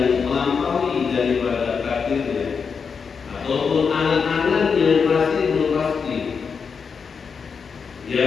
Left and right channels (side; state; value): right; quieter; 5.8 dB